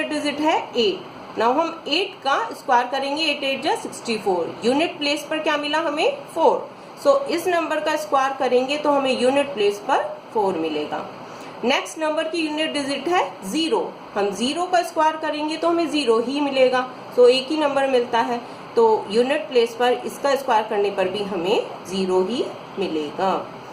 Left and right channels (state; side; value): identical; both; correlation 1.00